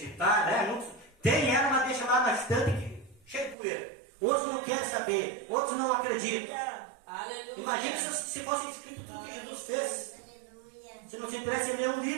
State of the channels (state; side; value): drops out; left; at 3.6 s